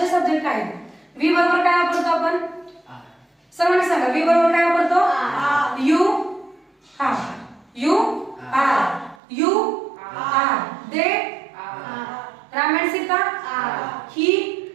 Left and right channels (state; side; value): drops out; left; at 9.2 s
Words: सब्जेक्ट आहेत, वी बरोबर काय वापरतो आपण, सर्वांनी सांगा. वी बरोबर काय वापरतो, यू. हा you are. You are. They Ram and Sita. He